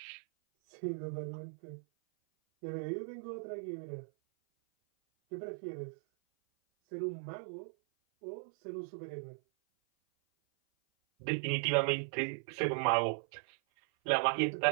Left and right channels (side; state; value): left; silent; 53 dB below the other